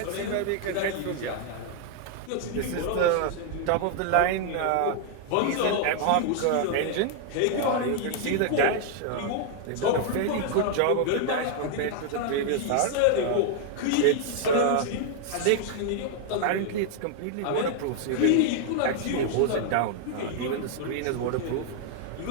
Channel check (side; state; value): both; different; correlation 0.00